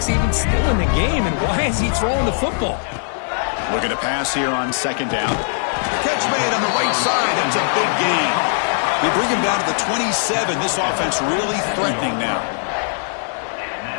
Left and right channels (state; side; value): silent; right; digital silence